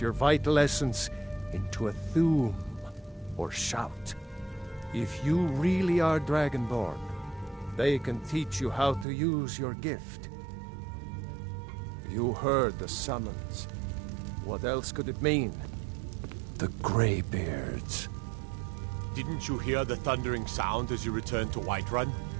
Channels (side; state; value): left; drops out; at 9.1 s